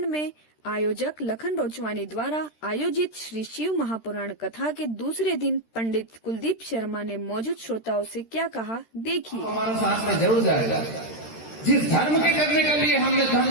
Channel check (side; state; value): right; late; 13 ms